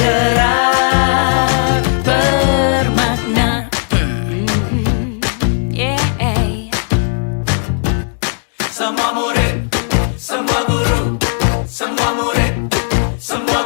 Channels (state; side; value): silent; right; 62 dB below the other